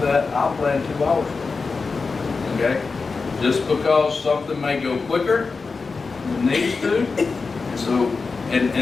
that. I'll plan 2 hours. Okay? Just because something may go quicker than it needs to. So,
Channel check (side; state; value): right; quieter; 4.4 dB